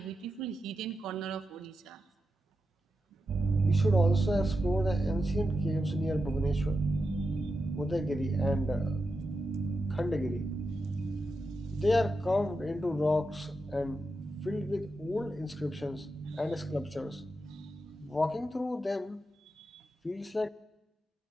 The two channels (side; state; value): both; normal; correlation 0.88